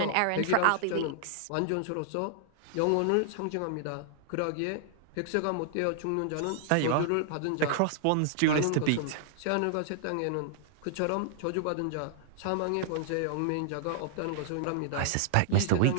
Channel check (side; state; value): both; different; correlation -0.01